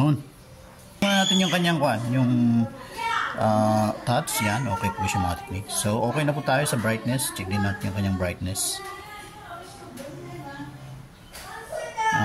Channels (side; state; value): both; identical; correlation 1.00